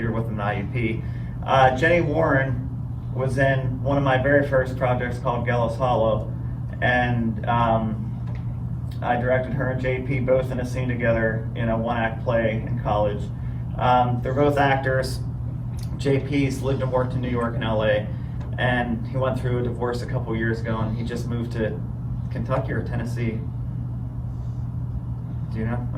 with them at IUP. Jenny Warren was in one of my very first projects called Gallows Hollow, and I directed her and JP both in a scene together in a one-act play in college. They're both actors. JP's lived and worked in New York and LA, and he went through a divorce a couple years ago, and he just moved to Kentucky or Tennessee. Do you know?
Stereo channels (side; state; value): both; identical; correlation 1.00